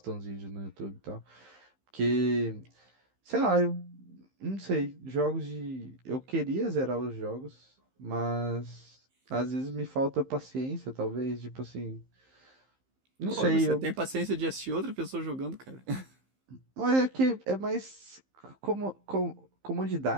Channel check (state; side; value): late; left; 15 ms